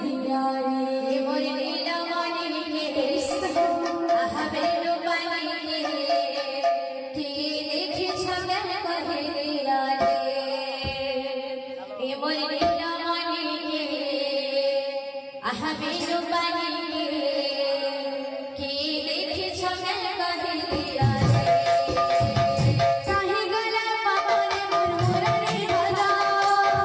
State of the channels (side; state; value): both; identical; correlation 1.00